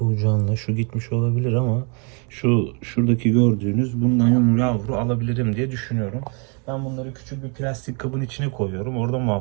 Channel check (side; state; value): left; quieter; 36.0 dB